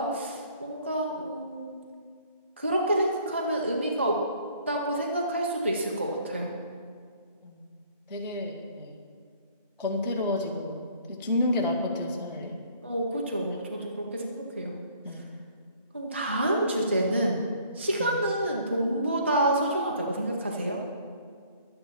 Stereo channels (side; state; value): both; inverted; correlation -0.57